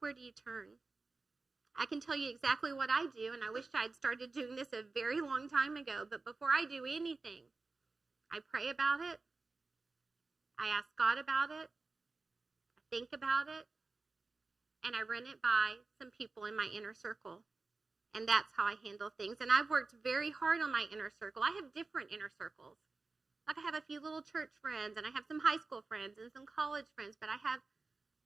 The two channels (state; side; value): quieter; left; 3.8 dB